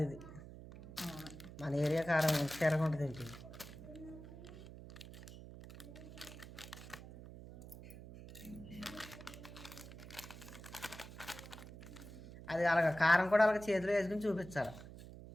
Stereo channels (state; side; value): noise; right; hum, 14 dB below the sound